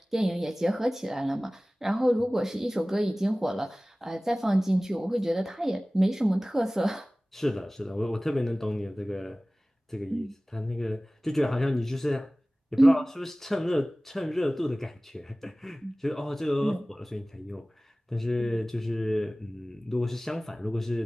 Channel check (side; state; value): both; normal; correlation 0.98